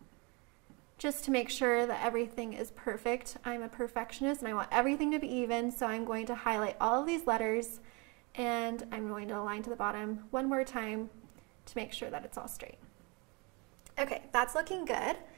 Just to make sure that everything is perfect. I'm a perfectionist and I want everything to be even, so I'm going to highlight all of these letters and I'm going to align to the bottom one more time to make sure that it's all straight. Okay, that's looking good.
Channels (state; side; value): quieter; left; 29.6 dB